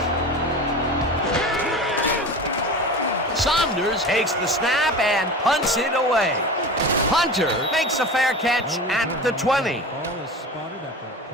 Saunders takes the snap and punts it away. Hunter makes a fair catch at the 20. Ball is spotted at the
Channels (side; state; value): both; normal; correlation 0.32